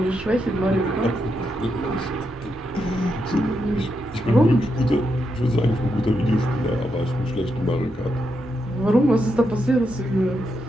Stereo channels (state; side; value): normal; both; correlation 0.83